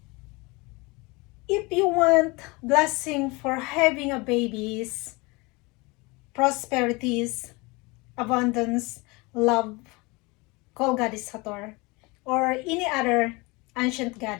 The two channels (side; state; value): right; quieter; 25.6 dB